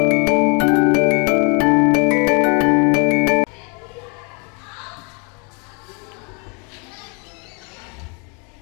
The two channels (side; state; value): right; quieter; 35.3 dB